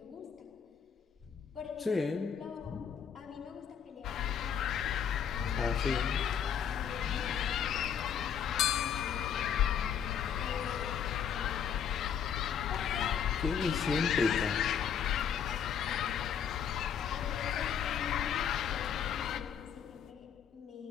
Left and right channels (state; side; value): quieter; right; 8.1 dB